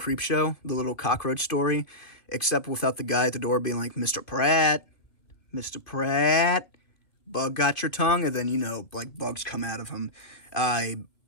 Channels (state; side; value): late; right; 2.3 ms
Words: the little cockroach story, except without the guy at the door being like, Mr. Pratt, bug got your tongue, and then like bugs come out of him. I